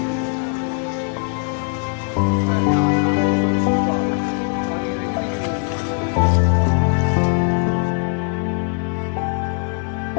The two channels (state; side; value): quieter; right; 37.6 dB